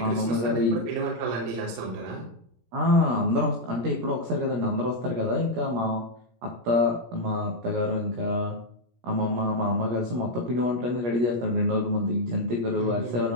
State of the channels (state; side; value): late; left; 17 ms